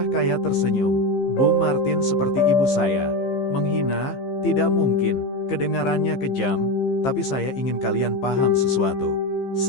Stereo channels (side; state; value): right; late; 15 ms